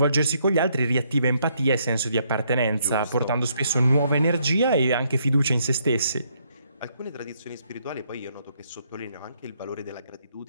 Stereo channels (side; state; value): both; inverted; correlation -0.72